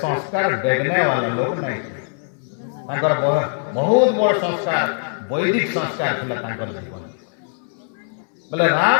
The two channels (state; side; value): silent; right; 65 dB below the other